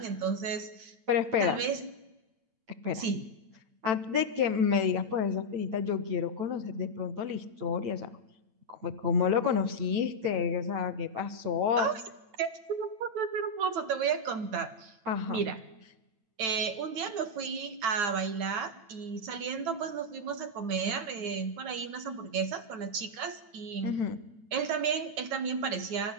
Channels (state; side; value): late; left; 9.0 ms